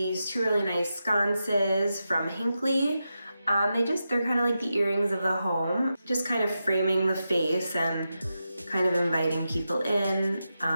2 really nice sconces from Hinckley. They're kind of like the earrings of the home, just kind of framing the face and kind of inviting people in.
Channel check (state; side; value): inverted; both; correlation -0.88